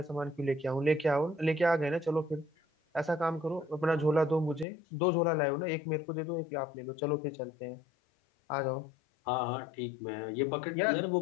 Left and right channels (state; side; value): drops out; right; at 4.7 s